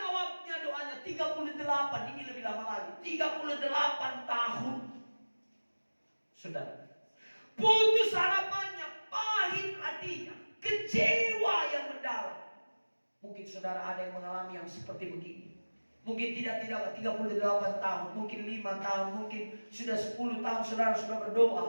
doanya, 38, ini lebih lama lagi, 38 tahun. Saudara, putus harapannya, pahit hatinya, kecewa yang mendalam. Mungkin saudara ada yang mengalami yang seperti begini. Mungkin tidak 38 tahun, mungkin 5 tahun, mungkin sudah 10 tahun saudara sudah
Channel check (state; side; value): inverted; both; correlation -1.00